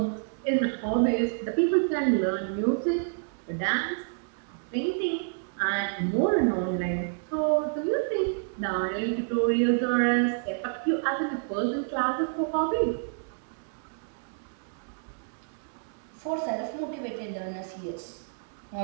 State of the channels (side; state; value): left; silent; digital silence